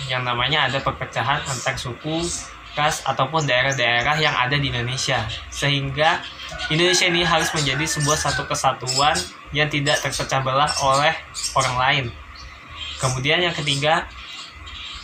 yang namanya ada perpecahan antar suku, ras, ataupun daerah-daerah yang ada di Indonesia. Sehingga Indonesia ini harus menjadi sebuah satu kesatuan yang tidak terpecah belah oleh orang lain. Kemudian yang ketiga,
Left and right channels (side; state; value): both; identical; correlation 1.00